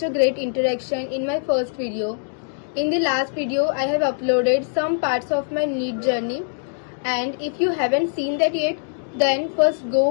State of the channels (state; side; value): silent; right; digital silence